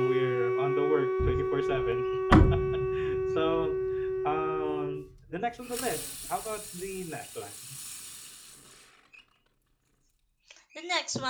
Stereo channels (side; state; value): both; identical; correlation 1.00